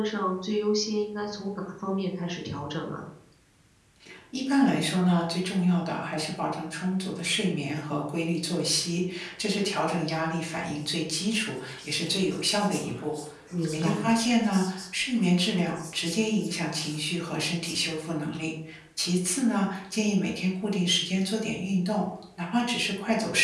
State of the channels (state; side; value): identical; both; correlation 1.00